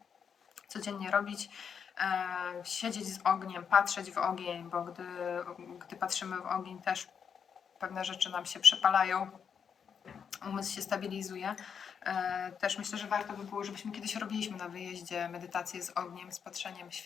codziennie robić. Siedzieć z ogniem, patrzeć w ogień, bo gdy patrzymy w ogień, też pewne rzeczy nam się przepalają, umysł się stabilizuje. Też myślę, że warto by było, żebyśmy kiedyś robiliśmy na wyjeździe medytację z ogniem, z patrzeniem w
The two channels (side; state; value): right; quieter; 7.1 dB